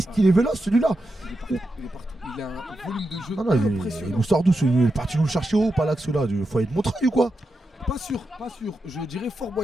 qu'il est véloce celui-là? Il est partout. Il a un volume de jeu Non, il impressionnant. nous sort d'où celui-là? Il est parti nous le chercher haut, pas là que celui-là. Du foyer de Montreuil ou quoi? Pas sûr. Je dirais Fort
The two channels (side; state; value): both; normal; correlation 0.88